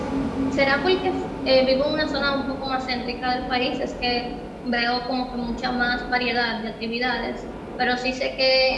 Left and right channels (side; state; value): both; identical; correlation 1.00